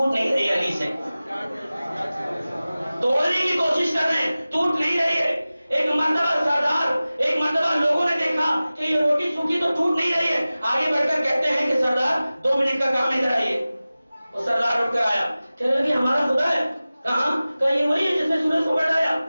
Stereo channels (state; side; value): inverted; both; correlation -0.97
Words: نہیں رہی علی سے، توڑنے کی کوشش کر رہے ہیں، ٹوٹ نہیں رہی ہے۔ ایک مرتبہ سردار، ایک مرتبہ لوگوں نے دیکھا کہ یہ روٹی سوکھی تو ٹوٹ نہیں رہی ہے، آگے بڑھ کر کہتے ہیں کہ سردار 2 منٹ کا کام ادھر آئیے، وہ سردار اٹھ کر آیا، کہنے لگے ہمارا خدا ہے، کہاں؟ کہا یہ وہی ہے جس نے سورج کو پلٹایا،